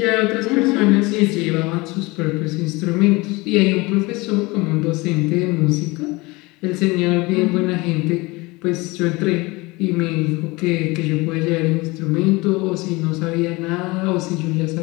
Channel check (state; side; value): quieter; right; 23.6 dB